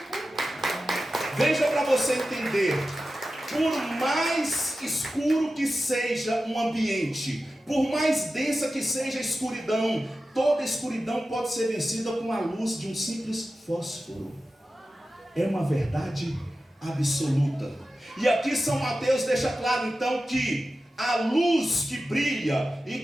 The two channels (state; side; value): normal; both; correlation 0.93